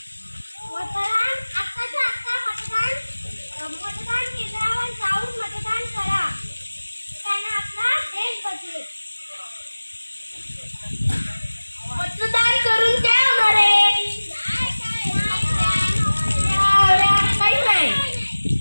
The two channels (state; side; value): inverted; both; correlation -1.00